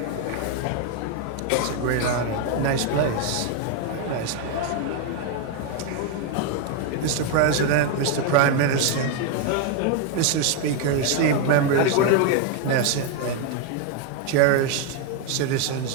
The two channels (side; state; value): both; different; correlation 0.01